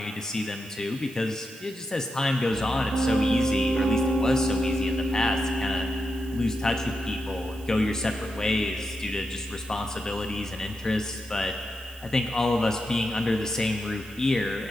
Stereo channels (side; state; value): right; noise; hiss, 21 dB below the sound